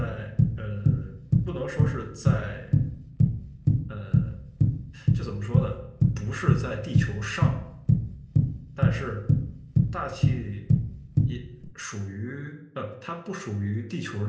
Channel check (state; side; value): identical; both; correlation 1.00